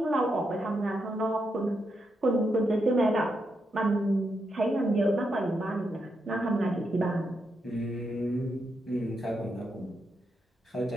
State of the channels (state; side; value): normal; both; correlation 0.83